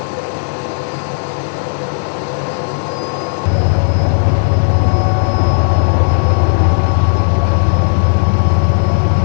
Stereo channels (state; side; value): silent; right; digital silence